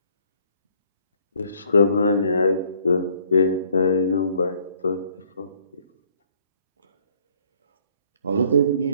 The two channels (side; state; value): both; inverted; correlation -0.63